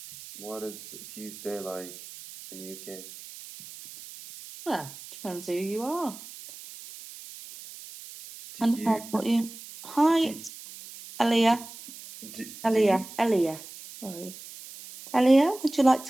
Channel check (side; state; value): right; noise; hiss, 15 dB below the sound